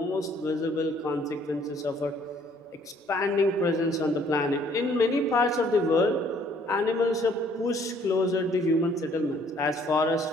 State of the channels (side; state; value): both; normal; correlation 0.61